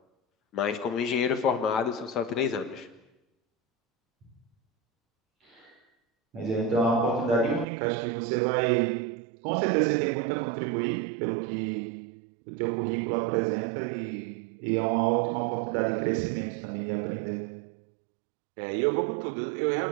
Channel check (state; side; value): drops out; left; at 7.7 s